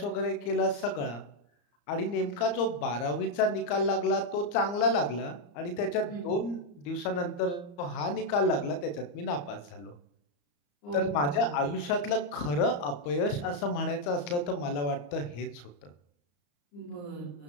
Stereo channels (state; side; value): late; right; 34 ms